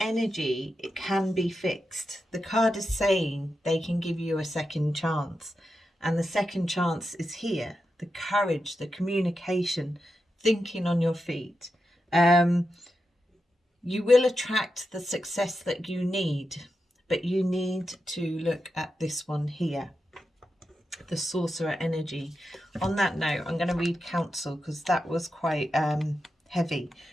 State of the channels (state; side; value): normal; both; correlation 0.88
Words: it can be fixed. The card is saying they can give you a second chance, and the second chance is here. The courage, the communication, thinking on your feet. You will attract the success that you need, but you need to look at this one here, the Sorcerer energy. On that note, I'm going to read Council because that was quite heavy